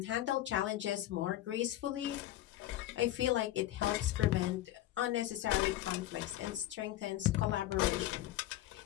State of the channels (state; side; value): quieter; right; 14.4 dB